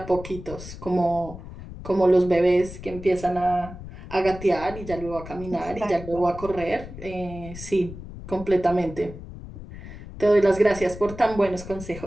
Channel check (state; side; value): noise; left; rumble, 13 dB below the sound